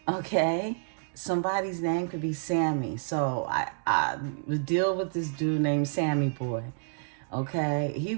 okay? Somebody's name could be Sammy. So I would deal with this dude named Sammy Boy, okay? He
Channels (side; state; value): left; quieter; 39.7 dB